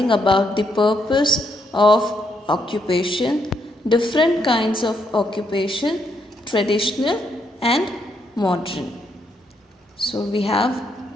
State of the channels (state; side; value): normal; both; correlation 0.76